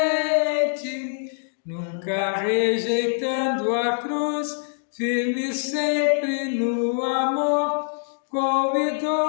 nunca rejeitando a cruz, firme sempre no amor, com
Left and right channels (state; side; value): silent; right; digital silence